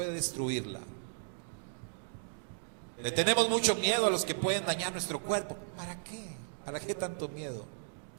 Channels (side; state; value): left; silent; digital silence